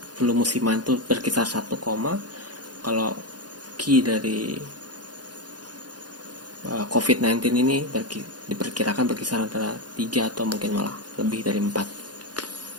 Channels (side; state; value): left; late; 0.69 ms